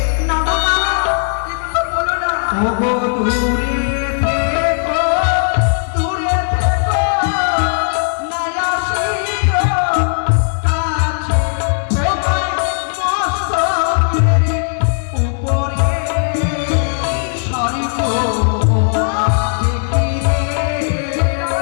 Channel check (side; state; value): right; silent; digital silence